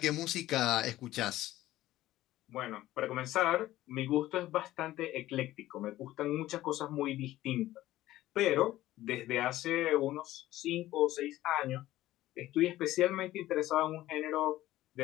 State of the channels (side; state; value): right; quieter; 15.4 dB